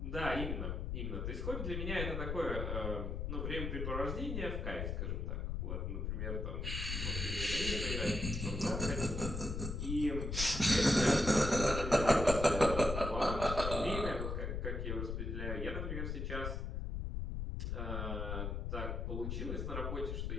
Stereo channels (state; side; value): noise; left; rumble, 3 dB below the sound